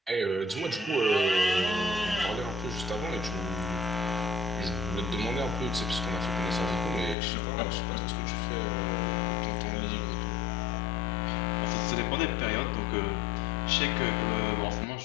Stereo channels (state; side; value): drops out; right; at 7.2 s